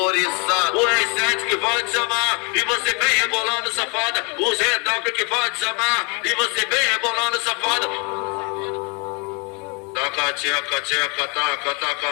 O R7 que vai te chamar e você vem rebolando safada. O Zedalco que vai te chamar e você vem rebolando safada. Taca, tcheca, tcheca, taca,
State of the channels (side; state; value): right; quieter; 32.5 dB